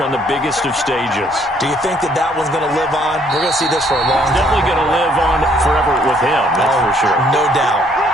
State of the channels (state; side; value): normal; both; correlation 0.65